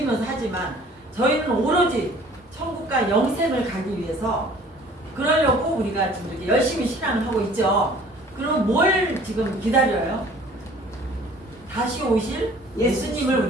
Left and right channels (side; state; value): both; normal; correlation 0.52